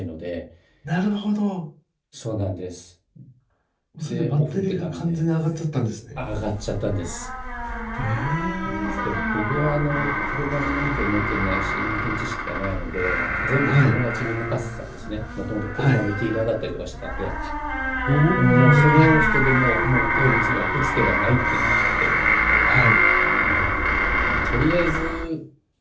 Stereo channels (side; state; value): both; identical; correlation 1.00